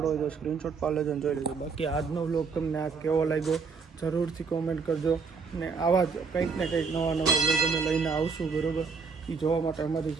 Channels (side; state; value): left; quieter; 5.1 dB